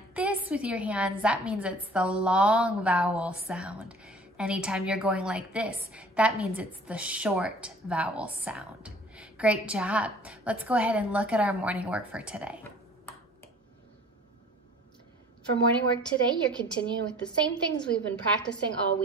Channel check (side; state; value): both; normal; correlation 0.48